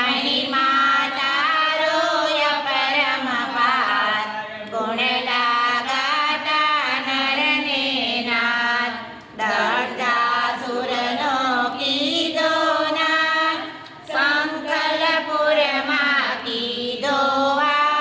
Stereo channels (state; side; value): identical; both; correlation 1.00